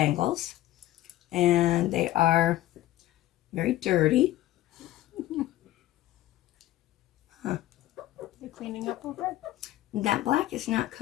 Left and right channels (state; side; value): quieter; right; 15.3 dB